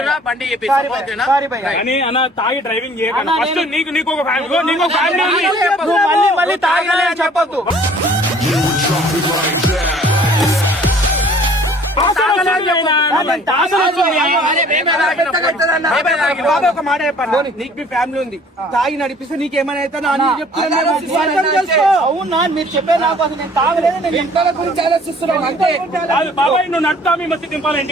బండి చెప్పేసి ఓకేనా? సారీ భయ్యా. కానీ అన్న తాగి డ్రైవింగ్ చేయకండి. అన్నా, ఫస్ట్ నేను- నీకు ఒక ఫ్యామిలీ నీకు ఒక ఫ్యామిలీ ఉంది. నువ్వు మళ్ళీ మళ్ళీ తాగలే అని చెప్పొద్దు. తాగలేదు అయినా. తాగలేదు వస్తుంది. బాబా ఒక మాట చెప్పండి. నీకు మీ ఫ్యామిలీ ఉంది, తాగి నడిపిస్తే నీకేమైనా అయితే అవునా మీరు చెప్పే నాకు అసలు నేను తాగలేదు, నేను ఇంట్లో గురించి ఆలోచిస్తున్నాం అంతే. కాదు బాబాయ్, నువ్వు నడుతా మీ మస్తు దింపాలి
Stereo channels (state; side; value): normal; both; correlation 0.53